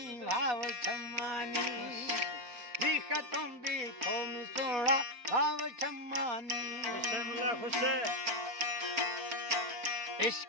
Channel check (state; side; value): late; left; 4.2 ms